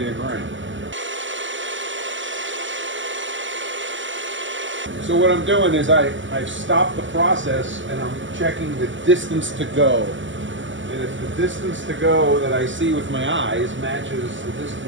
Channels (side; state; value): left; late; 0.55 ms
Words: to grind. So what I'm doing is I've stopped the process and I'm checking the distance to go. And if the distance to go that I see with my eyes matches the